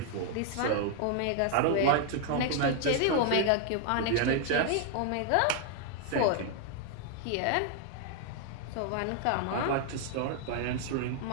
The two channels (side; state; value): both; different; correlation 0.00